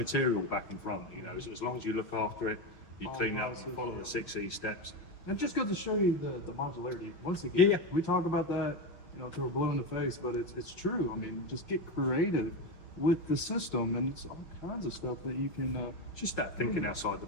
back and front. You know, as long as you look after it, you clean it up, and follow the 6E steps. And it just goes to show you the modularity. Once again, Yeah. we talk about that, you know, till we're blue in the face, but it's true. I mean, just get creative with the system, and it's all kinds of stuff that you can Just that thinking outside the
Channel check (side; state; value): right; late; 5.6 ms